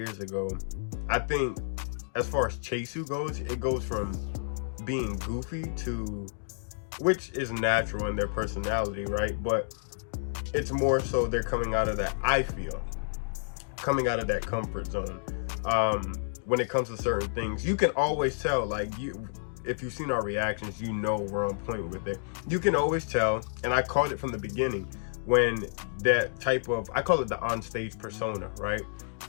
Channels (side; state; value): right; silent; digital silence